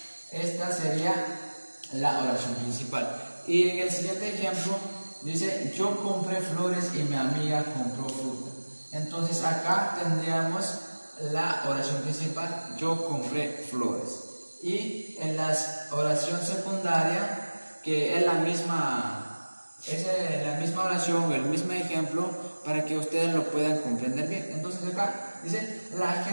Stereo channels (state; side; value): inverted; both; correlation -1.00